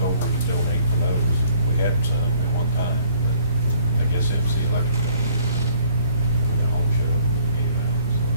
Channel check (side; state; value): both; inverted; correlation -0.60